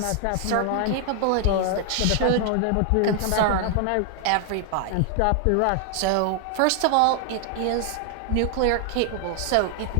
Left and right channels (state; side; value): different; both; correlation 0.00